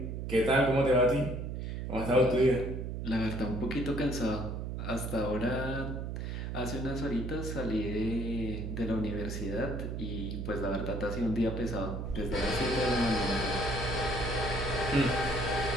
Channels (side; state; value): right; noise; hum, 4 dB below the sound